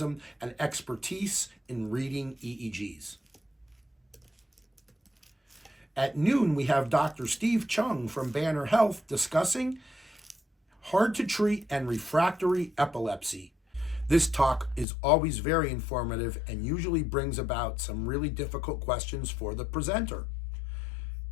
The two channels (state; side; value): drops out; right; at 14.9 s